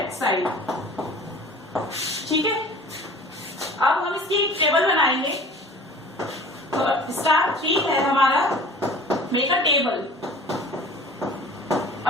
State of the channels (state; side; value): normal; both; correlation 0.44